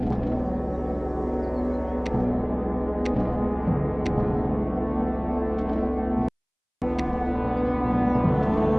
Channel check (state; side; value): identical; both; correlation 1.00